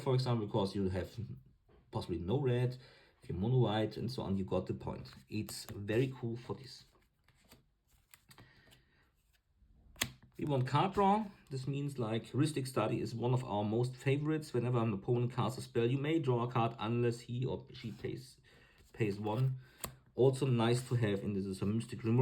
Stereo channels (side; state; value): both; identical; correlation 1.00